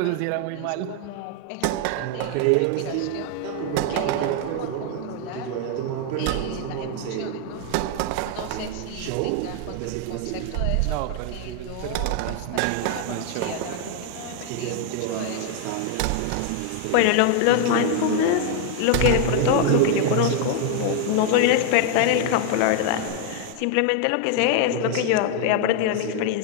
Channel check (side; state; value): both; different; correlation 0.00